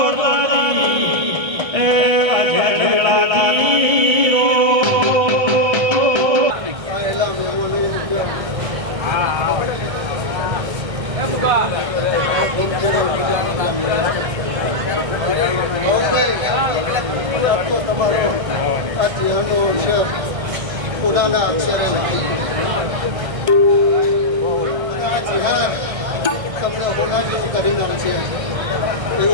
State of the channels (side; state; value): left; late; 1.3 ms